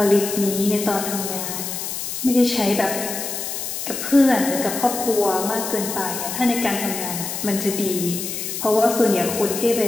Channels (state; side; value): noise; left; hiss, 5 dB below the sound